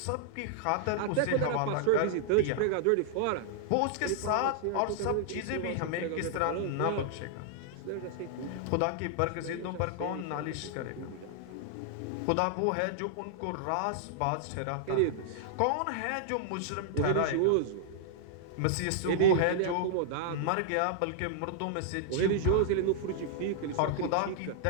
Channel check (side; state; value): both; different; correlation -0.01